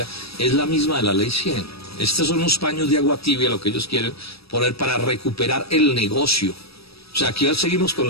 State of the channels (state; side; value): late; right; 0.77 ms